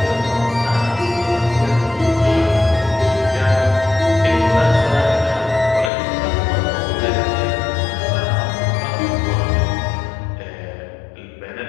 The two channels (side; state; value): right; drops out; at 5.9 s